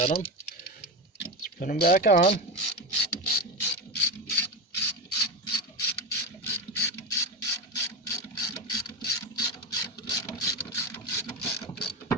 them. Let's put them back on.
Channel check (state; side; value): normal; both; correlation 0.19